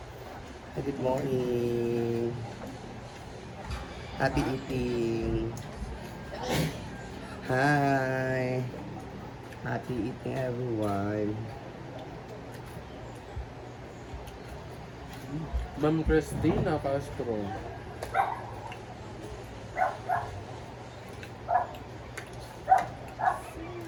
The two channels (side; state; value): both; identical; correlation 1.00